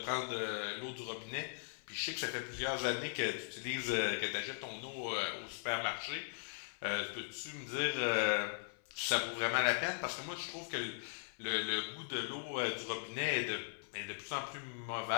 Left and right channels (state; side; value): silent; right; 52 dB below the other